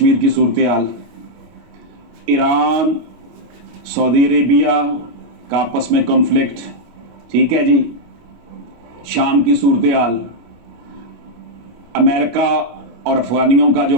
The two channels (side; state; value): left; late; 25 ms